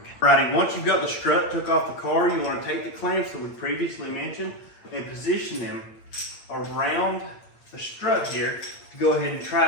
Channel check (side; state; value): right; late; 8.7 ms